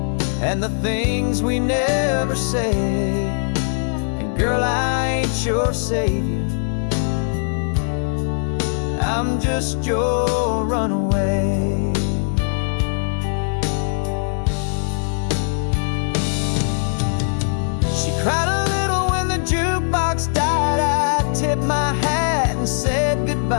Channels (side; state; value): right; silent; digital silence